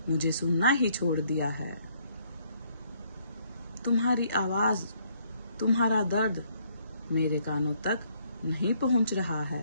मुझे सुनना ही छोड़ दिया है। तुम्हारी आवाज, तुम्हारा दर्द मेरे कानों तक नहीं पहुंच रहा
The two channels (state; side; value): inverted; both; correlation -0.67